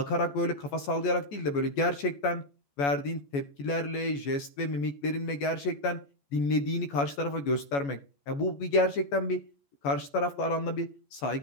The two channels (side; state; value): right; late; 14 ms